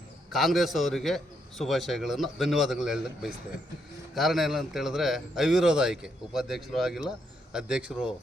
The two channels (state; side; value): normal; both; correlation 0.77